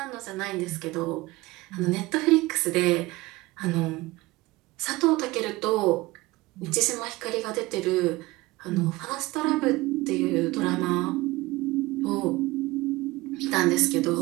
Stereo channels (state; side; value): quieter; left; 20.4 dB